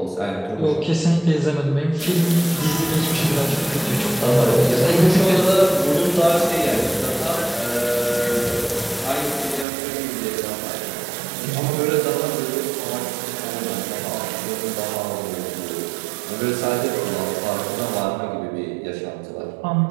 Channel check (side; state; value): left; drops out; at 9.7 s